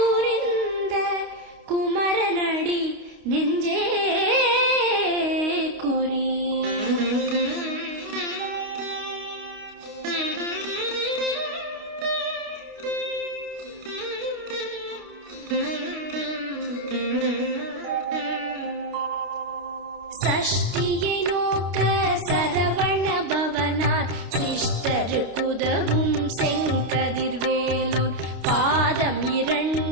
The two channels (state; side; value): late; left; 29 ms